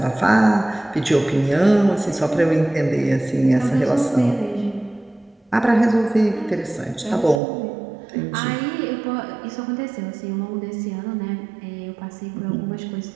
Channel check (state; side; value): drops out; left; at 7.4 s